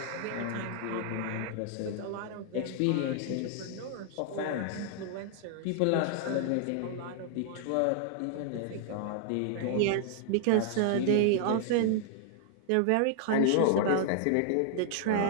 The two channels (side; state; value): both; different; correlation -0.01